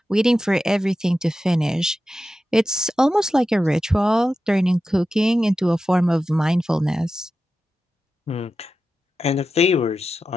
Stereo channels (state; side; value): normal; both; correlation 0.91